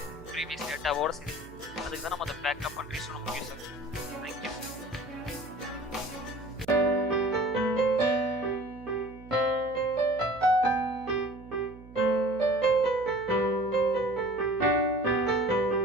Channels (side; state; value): right; noise; hum, 19 dB below the sound